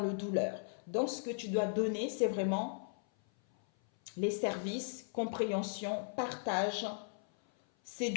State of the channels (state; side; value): silent; right; 53 dB below the other